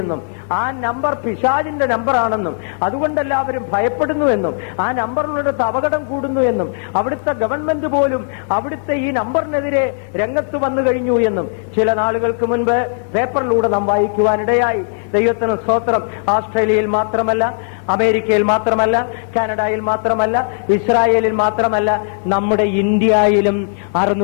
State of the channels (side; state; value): right; silent; 67 dB below the other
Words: എന്നും ആ നമ്പർ പിശാചിന്റെ നമ്പറാണെന്നും അതുകൊണ്ട് എല്ലാവരും ഭയപ്പെടുന്നു എന്നും ആ നമ്പറിനടുത്ത് അപകടം കൂടുന്നു എന്നും അവിടുത്തെ ഗവൺമെന്റ് പോലും അവിടുത്തെ ഈ നമ്പറിനെതിരെ രംഗത്ത് വന്നു കഴിഞ്ഞു എന്നും ചില നാളുകൾക്ക് മുൻപ് പേപ്പറിലൂടെ നാം വായിക്കുവാനിടയായി. ദൈവത്തിന് സ്തോത്രം. ഓസ്ട്രേലിയയിൽ മാത്രമല്ല, അമേരിക്കയിൽ മാത്രമല്ല, കാനഡയിൽ മാത്രമല്ല, ഇസ്രായേലിൽ മാത്രമല്ല, നമ്മുടെ ഇന്ത്യയിലും